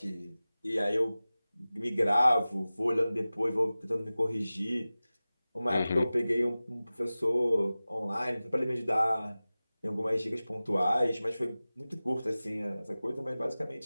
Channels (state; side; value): inverted; both; correlation -0.97